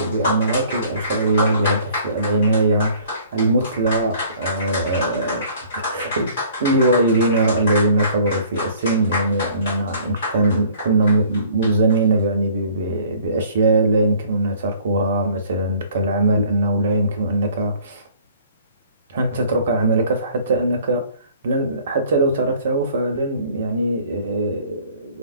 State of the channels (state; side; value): inverted; both; correlation -0.54